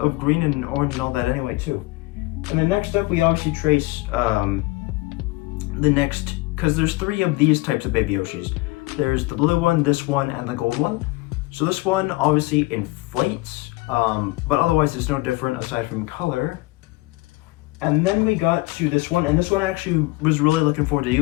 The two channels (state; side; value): quieter; right; 21.7 dB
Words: green and orange and all that anyway too. And then next up, we obviously trace the next, because there's 3 of these types of Baby Yoshis. There's the blue one, this one, and the gold one. So this one obviously inflates, but otherwise it's no different aside from color. And then we got to this one, and this one I actually was really looking forward to